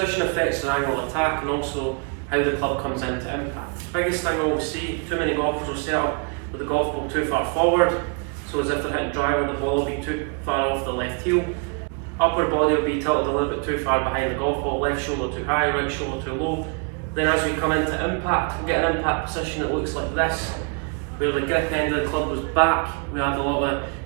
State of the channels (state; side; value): quieter; left; 35.9 dB